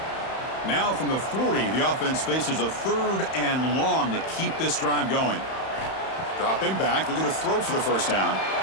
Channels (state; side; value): late; right; 31 ms